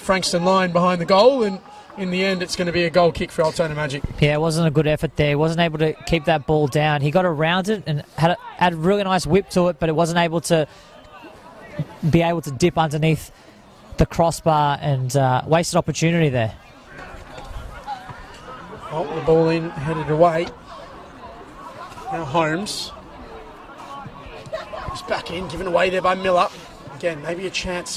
Frankston line behind the goal, and in the end, it's going to be a goal kick for Altona Magic. Yeah, it wasn't a good effort there. He wasn't able to keep that ball down. He got around it and had a really nice whip to it, but it wasn't able to be able to dip underneath the crossbar, and wasted opportunity there. Oh, the ball in, headed away. Now Holmes. He's back in, given away there by Miller. Again, maybe a chance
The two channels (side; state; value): both; identical; correlation 1.00